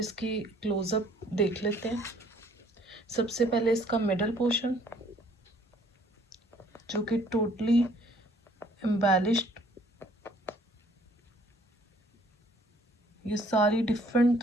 क्लोजअप देख लेते हैं। सबसे पहले इसका मिडल पोर्शन जो कि टोटली एम्बेलिश्ड, ये सारी डिफरेंट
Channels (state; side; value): normal; both; correlation 0.60